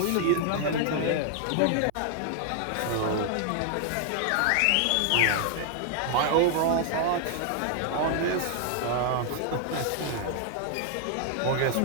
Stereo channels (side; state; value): both; different; correlation 0.00